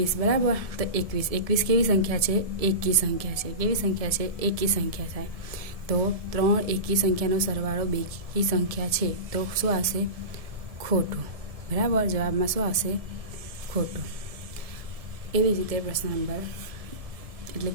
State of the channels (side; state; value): left; late; 1.7 ms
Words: બરાબર। તો 21 કેવી સંખ્યા છે? એકી સંખ્યા છે। કેવી સંખ્યા છે? એકી સંખ્યા થાય। તો 3 એકી સંખ્યાનો સરવાળો બેકી સંખ્યા છે, તો શું આવશે? ખોટું, બરાબર। જવાબમાં શું આવશે? ખોટું। એવી જ રીતે પ્રશ્ન નંબર એટલે